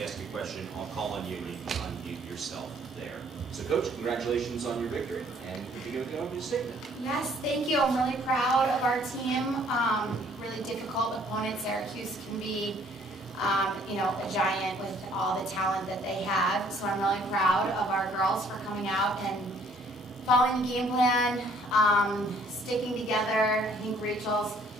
ask a question, I'll call on you and you can unmute yourself there. So Coach, congratulations on your victory, and we begin with the opening statement. Yes, thank you. I'm really proud of our team. Really difficult opponent. Syracuse can be a giant with all the talent that they have. So I'm really proud of our girls for coming out and following the game plan, sticking together. I think Rachel's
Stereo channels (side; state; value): both; normal; correlation 0.61